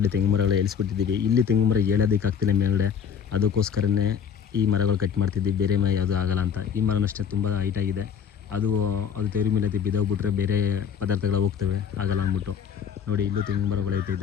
ತೆಂಗು ಮರಗಳು ಏಳಿಸ್ಬಿಟ್ಟಿದ್ದೀವಿ. ಇಲ್ಲಿ ತೆಂಗು ಮರ ಏಳೋದಕ್ಕಾಗ್ತಿಲ್ಲ ಮೇಲ್ಗಡೆ. ಅದಕ್ಕೋಸ್ಕರನೇ ಈ ಮರಗಳು ಕಟ್ ಮಾಡ್ತಿದ್ದೀವಿ. ಬೇರೆ ಮರ ಯಾವುದೂ ಆಗಲ್ಲ ಅಂತ. ಈ ಮರನಷ್ಟೇ ತುಂಬ ಹೈಟಾಗಿದೆ. ಅದು ತೆವ್ರ ಮೇಲೆ ಬಿದ್ದೋಗ್ಬಿಟ್ರೆ ಬೇರೆ ಪದಾರ್ಥಗಳು ಹೋಗ್ತವೆ, ಆಗಲ್ಲ ಅಂದ್ಬಿಟ್ಟು. ನೋಡಿ, ಇಲ್ಲೂ ತೆಂಗು ಮರಗಳೈತೆ,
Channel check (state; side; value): quieter; right; 7.7 dB